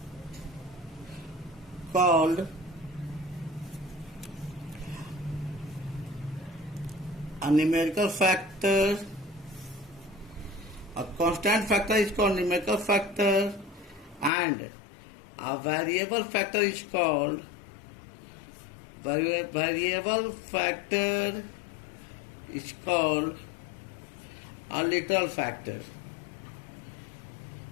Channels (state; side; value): drops out; right; at 14.3 s